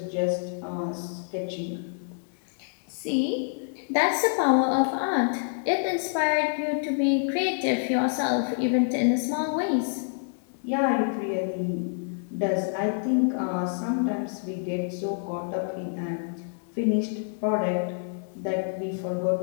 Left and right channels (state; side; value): silent; right; digital silence